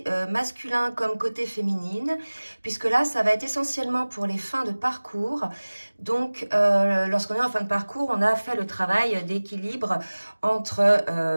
masculin comme côté féminine, puisque là, ça va être essentiellement pour les fins de parcours. Donc, lorsqu'on est en fin de parcours, on a fait le travail d'équilibre entre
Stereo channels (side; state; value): both; inverted; correlation -1.00